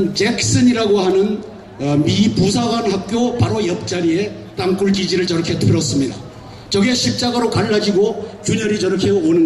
잭슨이라고 하는 미 부사관 학교 바로 옆자리에 땅굴 기지를 저렇게 틀었습니다. 저게 십자가로 갈라지고 균열이 저렇게 오는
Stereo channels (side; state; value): both; identical; correlation 1.00